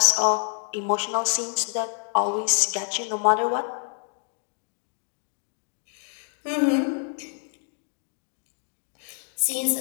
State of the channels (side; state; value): right; silent; 57 dB below the other